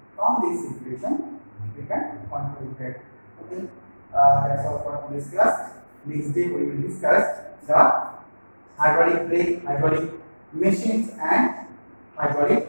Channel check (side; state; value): both; inverted; correlation -1.00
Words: From this equation, we can conclude that. Okay. That's all for today's class. Next day we will discuss the hydraulic brake, hydraulic machines, and hydraulic